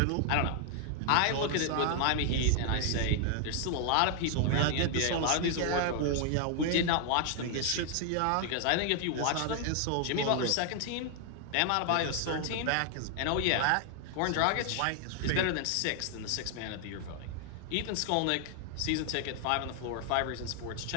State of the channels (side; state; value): both; different; correlation 0.00